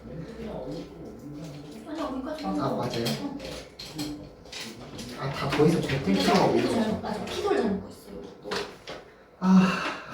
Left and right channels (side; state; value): both; identical; correlation 1.00